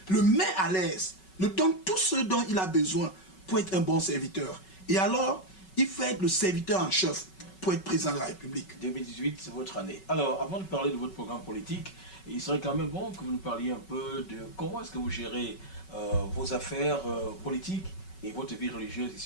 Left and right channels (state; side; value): late; right; 5.3 ms